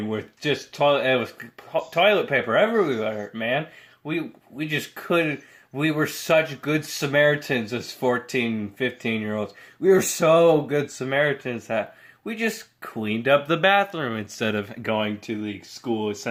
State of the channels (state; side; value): identical; both; correlation 1.00